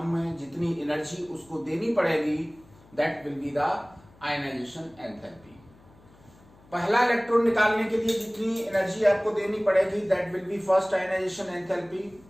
जितनी एनर्जी उसको देनी पड़ेगी, that will be the ionisation enthalpy. पहला इलेक्ट्रॉन निकालने के लिए जितनी एनर्जी आपको देनी पड़ेगी, that will be first ionisation enthalpy.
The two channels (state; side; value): noise; left; hum, 26 dB below the sound